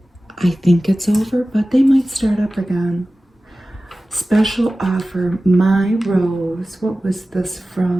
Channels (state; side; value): normal; both; correlation 0.96